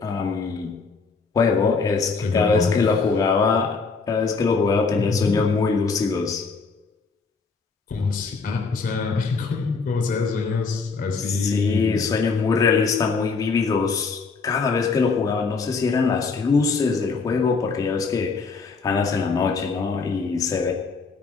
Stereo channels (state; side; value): quieter; right; 4.6 dB